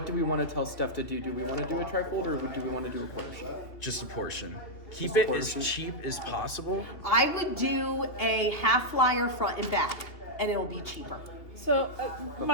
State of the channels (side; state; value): right; late; 2.9 ms